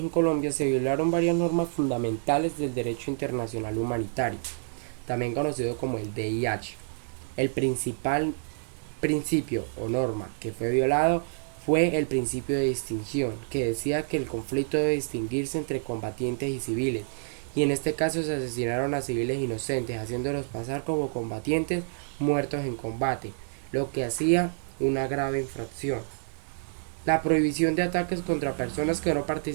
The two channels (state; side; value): silent; left; 59 dB below the other